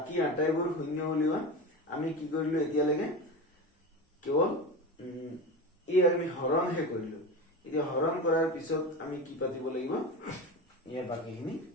আটাইবোৰ শূন্য উলিওৱা আমি কি কৰিলো এতিয়া লাগে কেৱল এই আমি হৰণ হে কৰিলো এতিয়া হৰণ কৰাৰ পিছত আমি কি পাতিব লাগিব ইয়াৰ বাকিখিনি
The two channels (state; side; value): normal; both; correlation 0.25